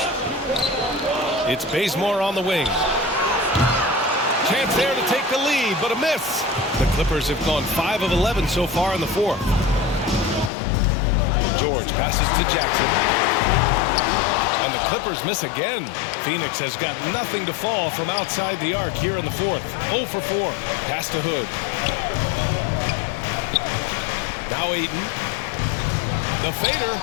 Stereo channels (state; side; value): drops out; right; at 10.5 s